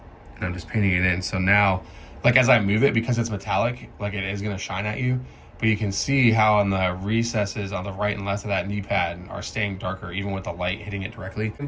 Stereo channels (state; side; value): identical; both; correlation 1.00